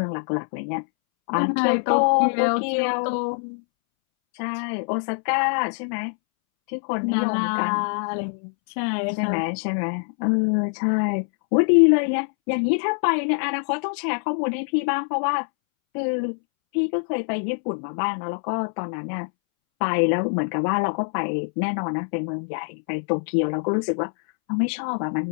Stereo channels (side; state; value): right; silent; 63 dB below the other